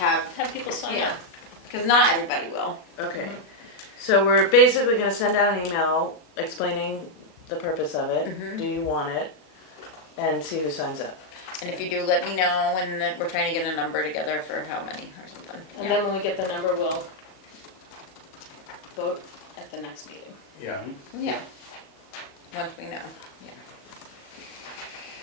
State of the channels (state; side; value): late; right; 37 ms